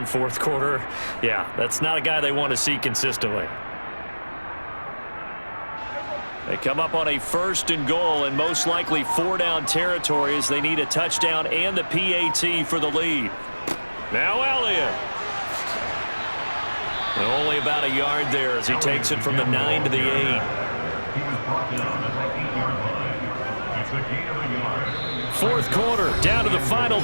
fourth quarter. Yeah, that's not a guy they want to see consistently. They come up on a 1st and goal and most likely 4-down territory as they need a touchdown and the PAT for the lead. Now Elliott. Only about a yard there as he takes it from the 9 to the 8. Fourth quarter, down to the final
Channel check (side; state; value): both; inverted; correlation -1.00